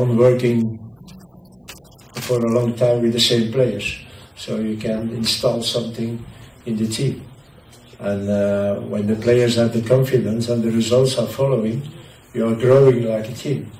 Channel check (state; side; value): identical; both; correlation 1.00